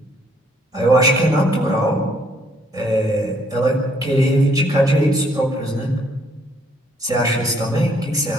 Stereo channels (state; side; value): normal; both; correlation 0.66